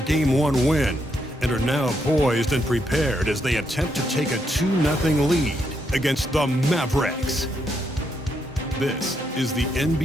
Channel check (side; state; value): both; normal; correlation 0.78